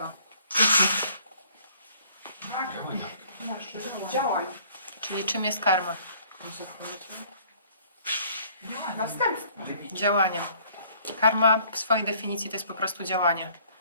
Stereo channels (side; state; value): both; inverted; correlation -0.57